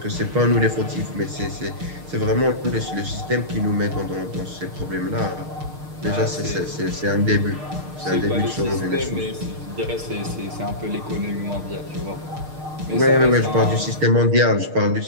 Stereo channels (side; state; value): left; late; 6.6 ms